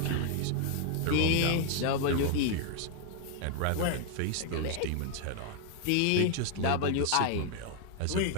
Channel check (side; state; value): both; different; correlation 0.00